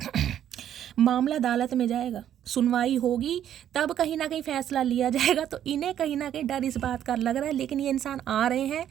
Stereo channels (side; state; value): left; quieter; 10.5 dB